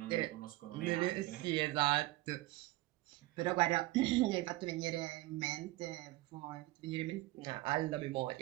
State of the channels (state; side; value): quieter; left; 19.0 dB